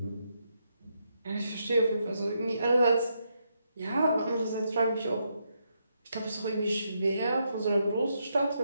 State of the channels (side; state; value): both; inverted; correlation -0.79